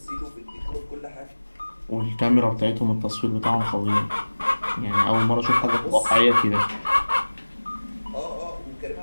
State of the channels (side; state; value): both; inverted; correlation -1.00